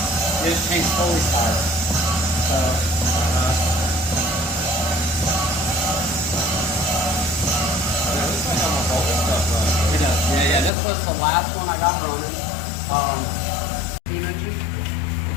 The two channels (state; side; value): drops out; right; at 10.7 s